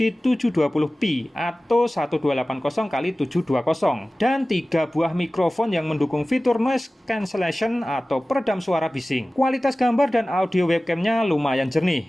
720p atau 1280x720 dan 3 buah mikrofon yang mendukung fitur noise cancellation atau peredam suara bising. Kualitas gambar dan audio webcamnya lumayan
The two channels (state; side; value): normal; both; correlation 0.97